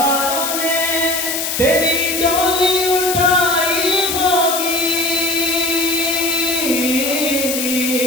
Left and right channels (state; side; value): noise; left; hiss, 2 dB below the sound